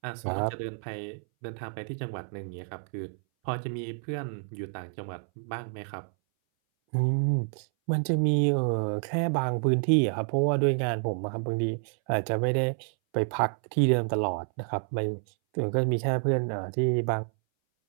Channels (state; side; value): silent; left; 59 dB below the other